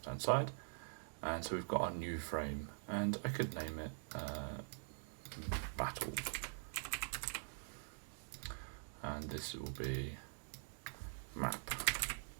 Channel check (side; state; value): left; silent; digital silence